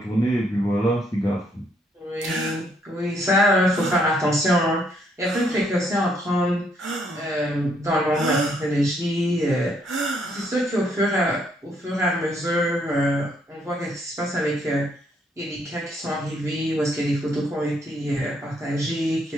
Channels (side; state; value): both; normal; correlation 0.71